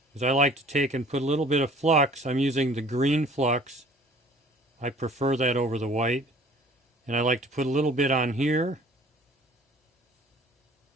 is I like to take and put a little bit of flux. I'm using the green flux. I prefer that over the white. And I like to put a little bit on here.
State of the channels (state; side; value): normal; both; correlation 0.51